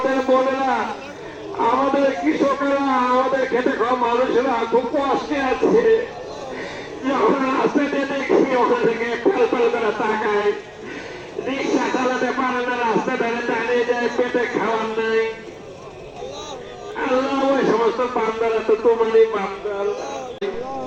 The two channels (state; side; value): identical; both; correlation 1.00